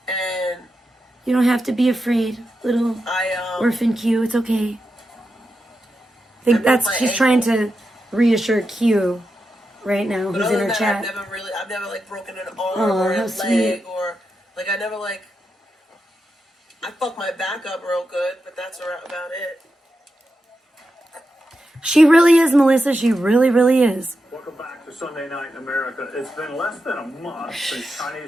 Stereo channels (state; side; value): normal; both; correlation 0.88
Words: And You don't have to be afraid, little orphan Q. It's okay. I think she's trying to reassure Q right now, who's in her chat. I've never like broken an arm Aw, or a how leg sweet. or like I never like. I fucked my back up real good, but that's about it. She really is, Melissa. She really, really is. Welcome back to Sunday Night in America. It's been less than a month since